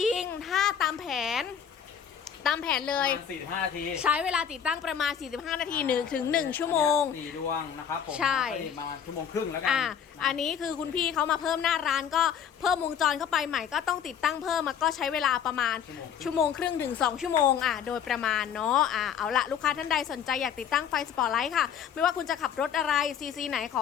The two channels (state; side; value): quieter; right; 8.3 dB